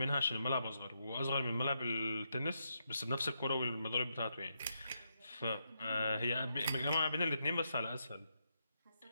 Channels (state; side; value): inverted; both; correlation -0.82